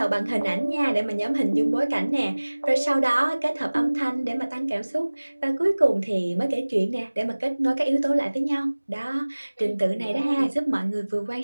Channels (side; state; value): both; inverted; correlation -1.00